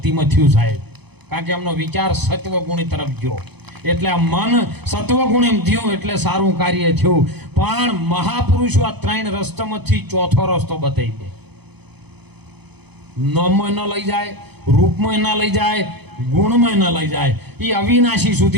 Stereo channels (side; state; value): left; late; 0.98 ms